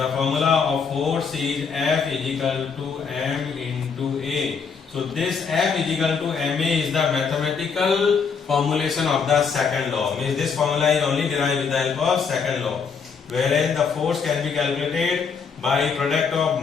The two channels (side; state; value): right; quieter; 5.8 dB